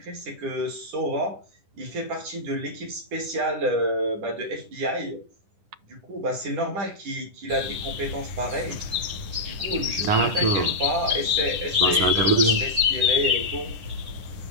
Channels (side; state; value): left; late; 10 ms